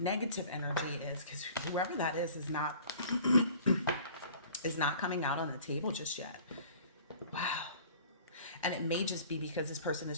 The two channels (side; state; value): both; inverted; correlation -0.48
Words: energy is, because whoever that is not coming out on the table just yet. Wow. And it may just be because this person